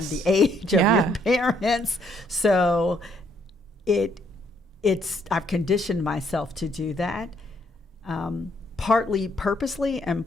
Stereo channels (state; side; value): normal; both; correlation 0.69